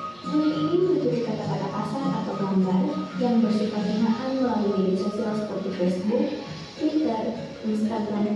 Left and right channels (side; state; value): both; identical; correlation 1.00